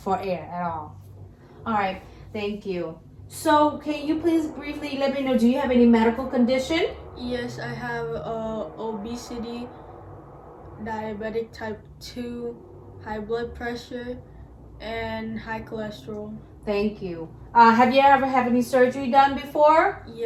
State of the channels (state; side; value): identical; both; correlation 1.00